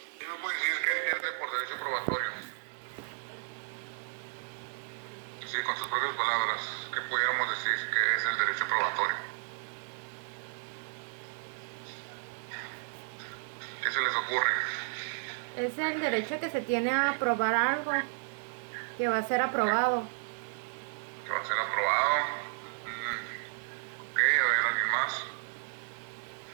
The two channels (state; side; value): silent; left; digital silence